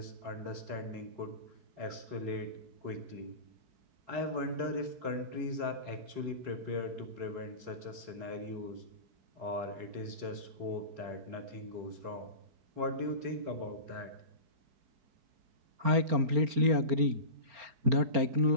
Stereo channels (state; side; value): late; left; 4.3 ms